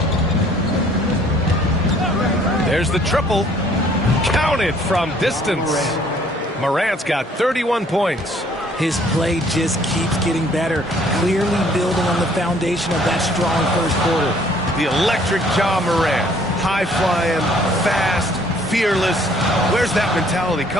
There's the triple. Counted from distance. Morant's got 31 points. His play just keeps getting better, clearly building on the foundation of that strong first quarter. The electric Ja Morant. High-flying, fast, fearless. Where's that mentality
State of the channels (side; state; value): both; normal; correlation 0.59